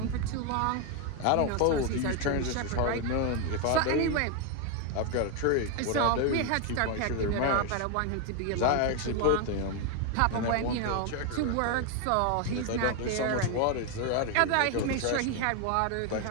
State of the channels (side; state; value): both; different; correlation 0.01